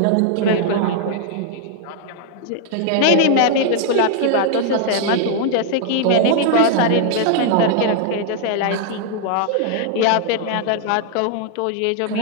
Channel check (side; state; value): both; different; correlation 0.00